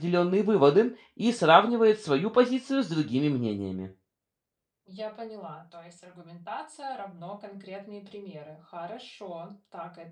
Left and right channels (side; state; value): both; identical; correlation 1.00